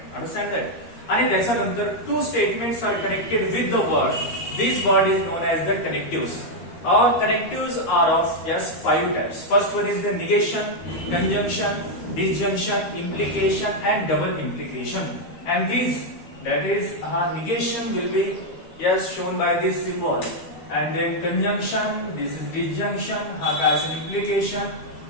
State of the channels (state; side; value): late; right; 13 ms